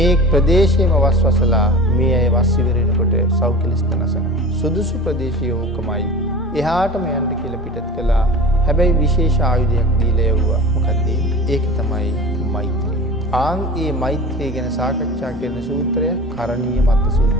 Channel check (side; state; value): both; normal; correlation 0.36